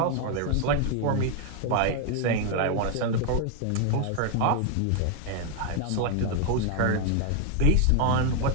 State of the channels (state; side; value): different; both; correlation 0.01